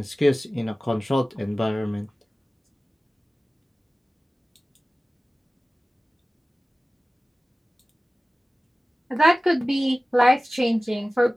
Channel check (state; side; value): normal; both; correlation 0.96